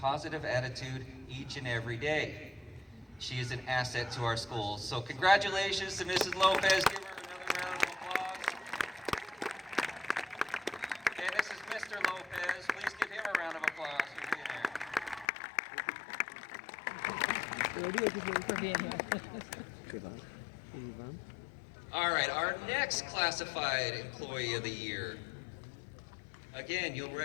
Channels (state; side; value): drops out; right; at 15.2 s